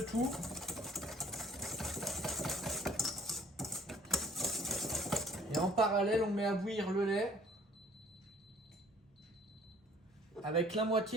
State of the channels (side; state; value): both; normal; correlation 0.57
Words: tout. Et en parallèle, on met à bouillir le lait avec la